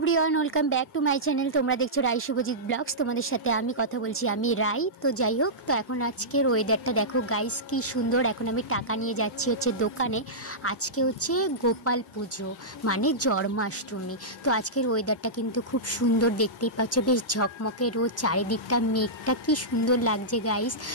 welcome back to my channel. তোমরা দেখছো রাই Subhajit blogs. তোমাদের সাথে আমি কথা বলছি, আমি রাই। তো যাই হোক, তো এখন আজকের ওয়েদারটা দেখো গাইস কি সুন্দর। এখন আমি টাকা নিয়ে যাচ্ছি হচ্ছে দোকানে। আজকে হচ্ছে গোপাল পুজো মানে জন্মাষ্টমী। তো আজকের ওয়েদারটা কিন্তু খুব সুন্দর, দেখতেই পাচ্ছ বেশ ঝকমকে রোদ, চারিদিকটা মেঘটা কি সুন্দর লাগছে গাইস।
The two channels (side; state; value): both; normal; correlation -0.14